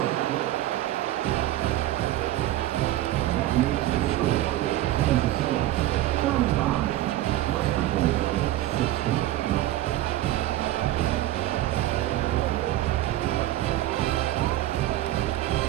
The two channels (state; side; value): quieter; left; 14.7 dB